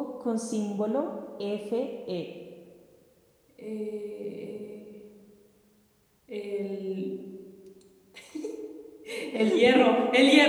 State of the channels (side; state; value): both; identical; correlation 1.00